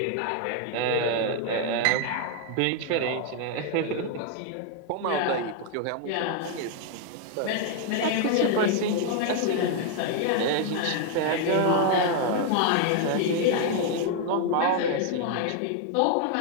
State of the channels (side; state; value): both; different; correlation 0.00